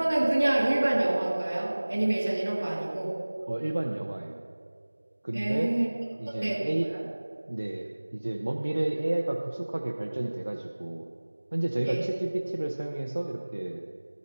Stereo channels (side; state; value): both; inverted; correlation -1.00